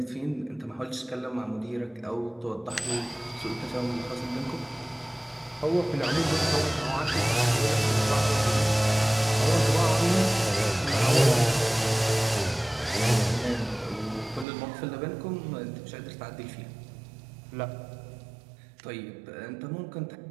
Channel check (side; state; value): left; drops out; at 14.5 s